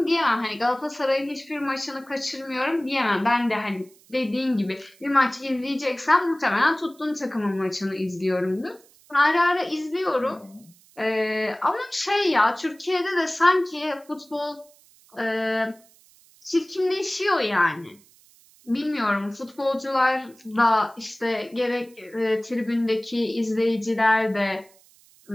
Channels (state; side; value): noise; right; hiss, 28 dB below the sound